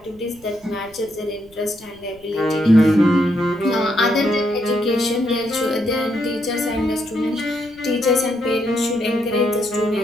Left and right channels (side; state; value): right; noise; rumble, 26 dB below the sound